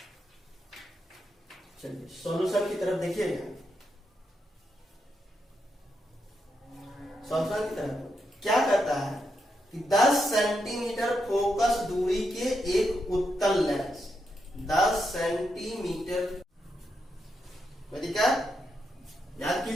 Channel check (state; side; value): normal; both; correlation 0.83